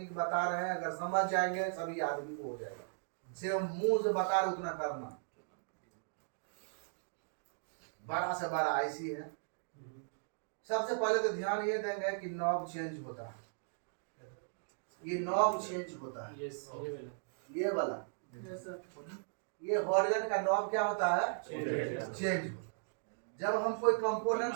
बता रहे हैं, अगर समझ जाएंगे सभी आदमी को हो जाएगा। सिर्फ मुंह से बता रहे उतना करना। बड़ा से बड़ा आईसी है। सबसे पहले तो ध्यान ये देंगे कि नॉब चेंज होता है, ये नॉब चेंज होता है, यस ये वाला ये हॉर्गन का नॉब क्या होता है, चेंज होता है। जब हम कोई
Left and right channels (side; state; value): left; silent; digital silence